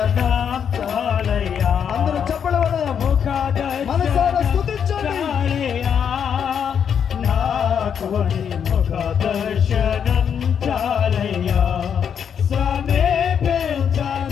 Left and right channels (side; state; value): right; quieter; 7.8 dB